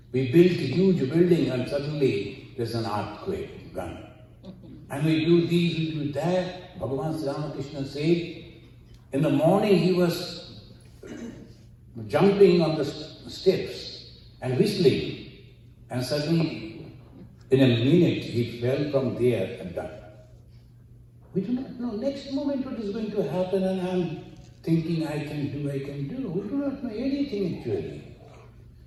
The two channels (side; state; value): both; identical; correlation 1.00